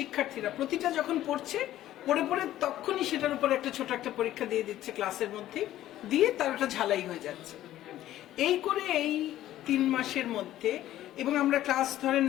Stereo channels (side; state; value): right; quieter; 13.6 dB